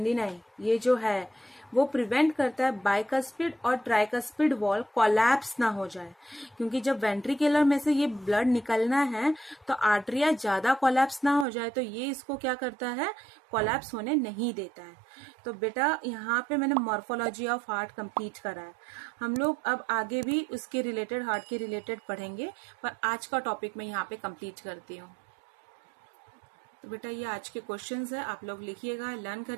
ये जो है वो प्रिवेंट करता है बाइकस्पिड और ट्राइकस्पिड वॉल कोलैप्स ना हो जाए, क्योंकि जब वेंट्रिकुलर में से ये ब्लड निकलना है तो आर्टरिया ज्यादा कोलैप्स ना हो जाए, तो ये इसको क्या करता है, कोलैप्स होने नहीं देता है। तो बेटा यहाँ पे मैंने मॉर्फोलॉजी ऑफ हार्ट कंप्लीट करा है। हम लोग अब आगे भी उसके रिलेटेड, हार्ट के रिलेटेड पढ़ेंगे, पर आज का टॉपिक मैं यहाँ पे कंप्लीट करती हूँ। तो बेटा ये आज के क्वेश्चंस है, आप लोग लिखिएगा, लर्न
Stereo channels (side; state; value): left; drops out; at 11.5 s